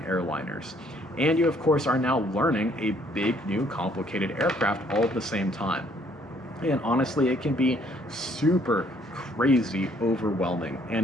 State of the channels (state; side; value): normal; both; correlation 0.64